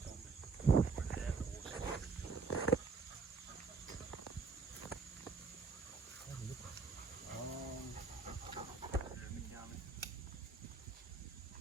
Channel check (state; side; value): quieter; left; 4.5 dB